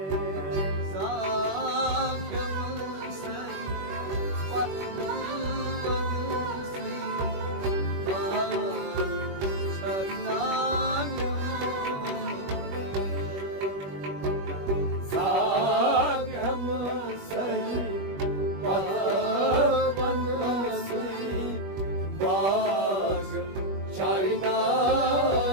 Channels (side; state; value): left; late; 21 ms